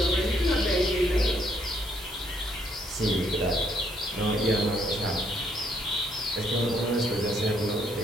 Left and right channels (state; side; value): normal; both; correlation 0.70